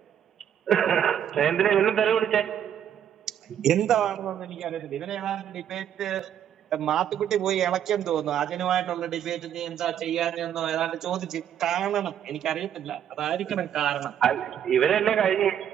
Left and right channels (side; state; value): left; quieter; 9.6 dB